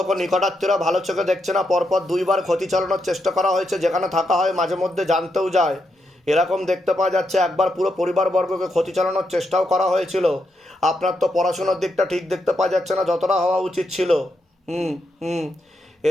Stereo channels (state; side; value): normal; both; correlation 0.82